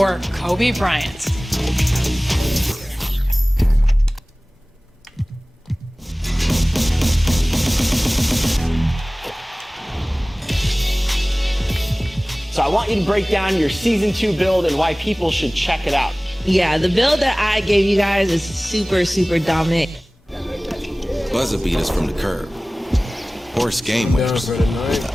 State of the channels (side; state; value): both; normal; correlation 0.98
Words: Kobe Bryant? So I want you to break down your Season 2 build and why people should check it out. Yeah, the build that I gave you guys is super, super dominant. Buzzer beaters from the curb. Horse game winners with